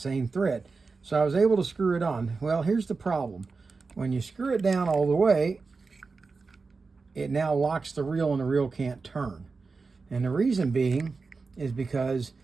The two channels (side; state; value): left; quieter; 4.3 dB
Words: thread. So I was able to screw it on. Well, here's the problem. When you screw it down all the way, it now locks the reel and the reel can't turn. And the reason being is because